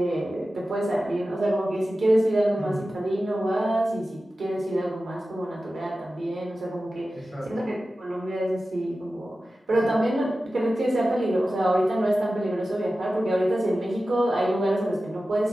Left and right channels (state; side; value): normal; both; correlation 0.94